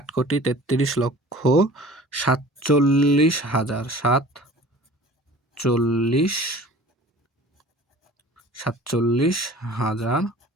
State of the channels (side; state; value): both; normal; correlation 0.44